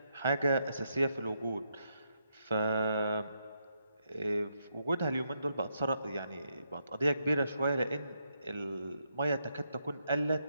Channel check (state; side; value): inverted; both; correlation -0.80